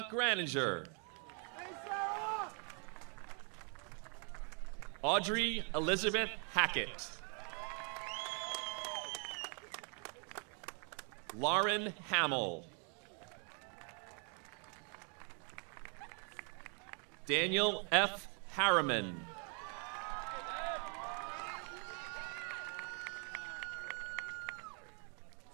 Graninger. Audrey Elizabeth Hackett. Lauren Hamill. Daniel F. Harriman.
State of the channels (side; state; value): left; quieter; 39.3 dB